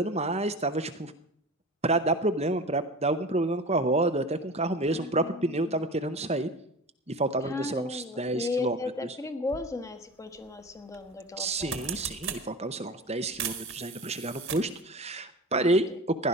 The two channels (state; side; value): normal; both; correlation 0.33